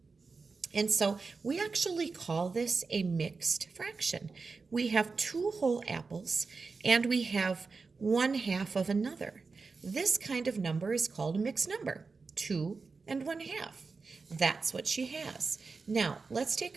And so we actually call this a mixed fraction. We have 2 whole apples and we have 1/2 of another. This kind of number is called a mixed number, 2 and 1/2. That's what she has. Now, let's take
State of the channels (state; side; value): quieter; left; 4.4 dB